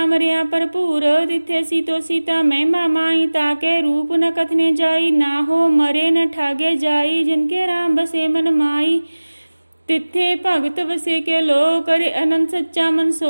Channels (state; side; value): inverted; both; correlation -1.00